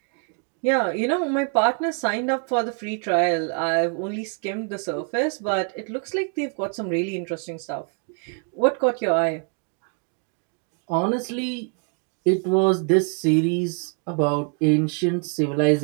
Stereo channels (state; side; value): quieter; left; 39.9 dB